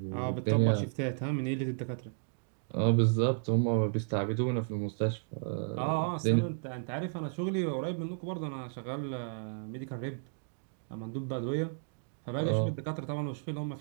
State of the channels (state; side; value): silent; left; digital silence